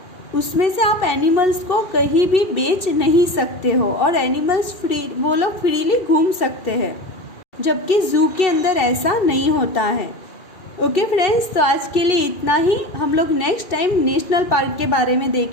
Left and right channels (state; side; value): late; right; 2.7 ms